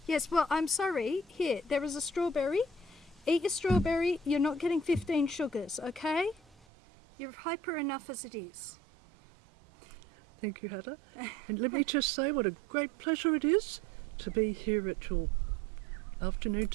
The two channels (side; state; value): left; drops out; at 6.7 s